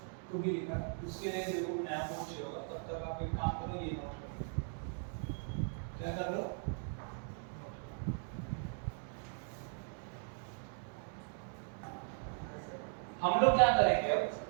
को भी लिखा, उसके लिए देखो नया नोट चाहिए होगा, तब तक आप एक काम करो, ये नोट करो, क्या कर लो, हम लोग क्या करेंगे अब,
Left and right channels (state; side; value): silent; left; 52 dB below the other